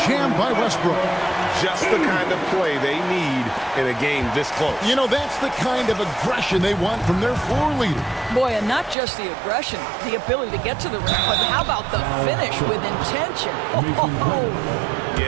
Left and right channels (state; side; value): drops out; left; at 9.0 s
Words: jam by Westbrook. Just the kind of play they need in a game this close. You know, that's the kind of aggression they want from their floor leader. Boy, and not just the aggression, the ability to get to the rim, but how about the finish with intention? Oh.